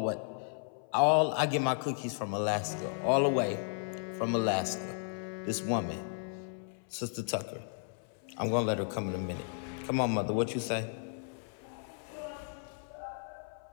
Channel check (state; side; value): silent; right; 55 dB below the other